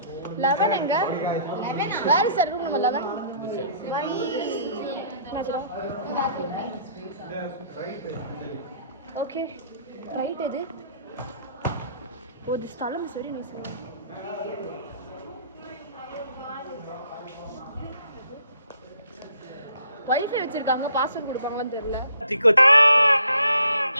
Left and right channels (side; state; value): both; inverted; correlation -0.61